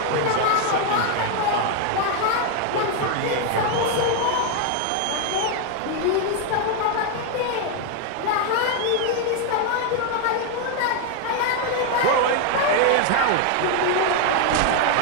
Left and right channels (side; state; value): both; different; correlation 0.01